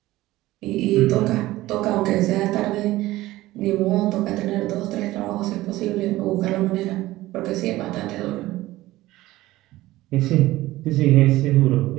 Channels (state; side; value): quieter; left; 17.1 dB